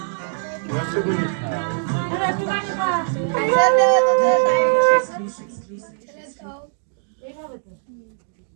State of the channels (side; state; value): left; silent; digital silence